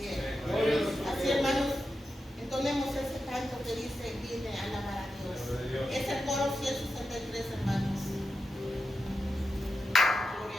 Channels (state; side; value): normal; both; correlation 0.89